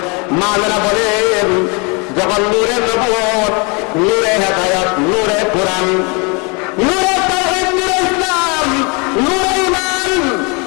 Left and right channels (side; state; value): right; quieter; 31.4 dB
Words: মায়েরা বলেন, যখন নূরে নবুয়ত, নূরে হেদায়েত, নূরে কোরআন, নূরে তাওহীদ, নূরে ইসলাম, নূরে ঈমান